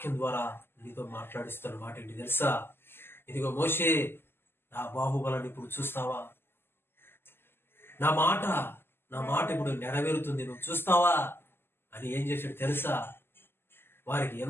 ద్వారా నీతో మాట్లాడిస్తున్న మాట ఏంటి తెలుసా? ఇదిగో మోషే, నా బాహుబలాన్ని ఇప్పుడు చూస్తావా? నా మాట ఇప్పుడు నెరవేరుతుంది, నువ్వు చూస్తావా అని ఏం చేశాడు తెలుసా? వారికి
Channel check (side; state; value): right; late; 0.11 ms